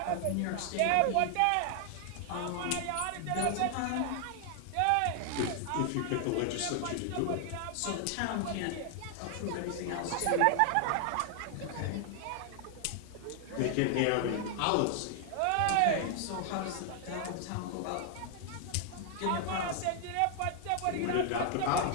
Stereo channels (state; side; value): different; both; correlation 0.00